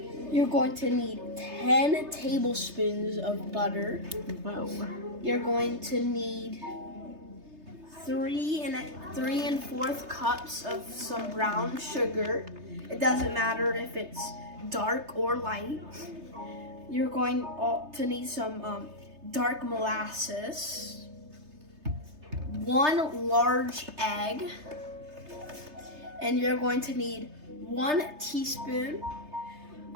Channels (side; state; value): left; late; 3.3 ms